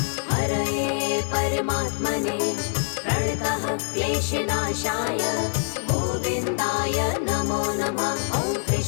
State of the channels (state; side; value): silent; right; 62 dB below the other